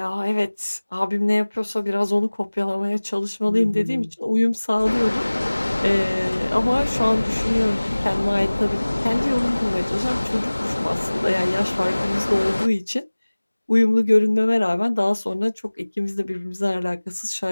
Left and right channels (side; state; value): both; inverted; correlation -1.00